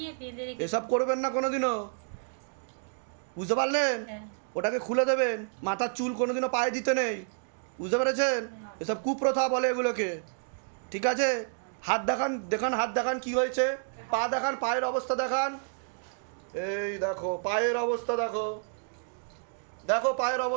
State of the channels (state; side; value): silent; left; digital silence